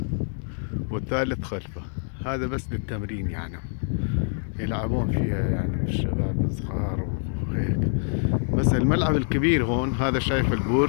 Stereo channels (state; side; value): silent; right; 58 dB below the other